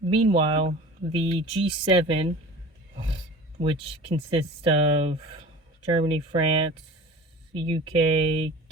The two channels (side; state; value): both; normal; correlation 0.39